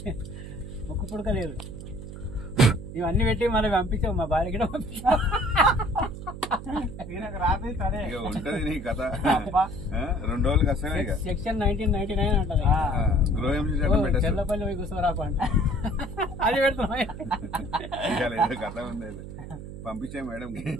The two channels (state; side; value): noise; right; hum, 11 dB below the sound